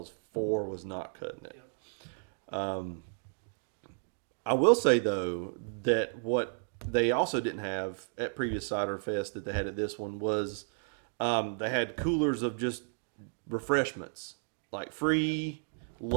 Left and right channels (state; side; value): silent; left; digital silence